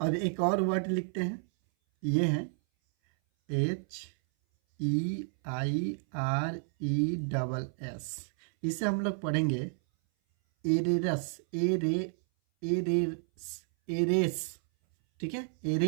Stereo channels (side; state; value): left; silent; 57 dB below the other